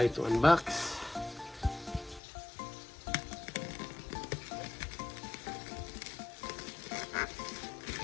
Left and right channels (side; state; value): right; drops out; at 2.2 s